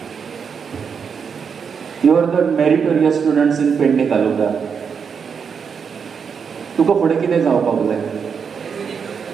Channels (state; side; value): quieter; left; 6.4 dB